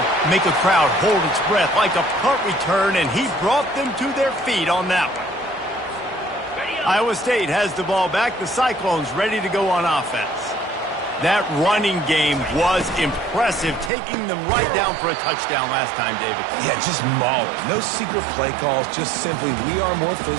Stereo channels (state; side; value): drops out; left; at 13.9 s